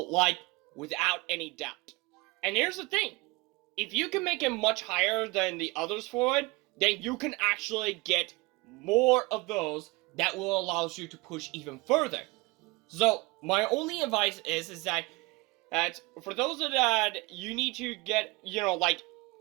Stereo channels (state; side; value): quieter; left; 23.6 dB